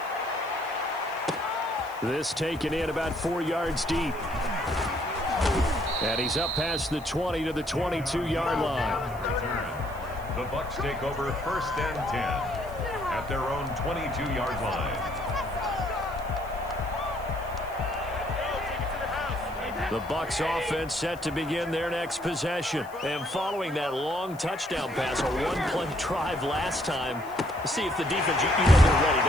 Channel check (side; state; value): left; noise; hiss, 23 dB below the sound